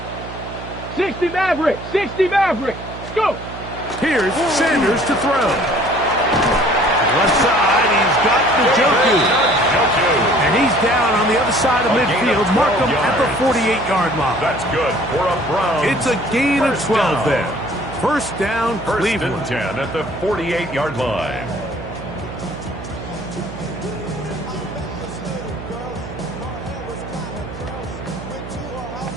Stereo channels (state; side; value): noise; right; hum, 11 dB below the sound